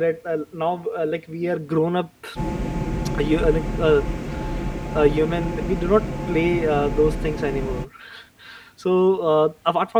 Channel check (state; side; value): identical; both; correlation 1.00